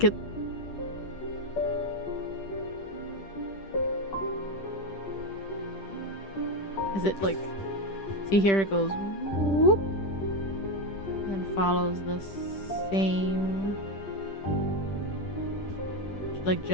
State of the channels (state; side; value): late; right; 10 ms